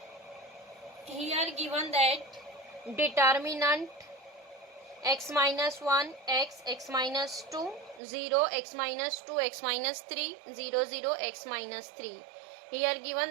Here given that determinant x minus 1, x minus 2, 0, x minus 2, x minus 3, 0, 0, x minus 3. Here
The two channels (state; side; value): drops out; left; at 8.0 s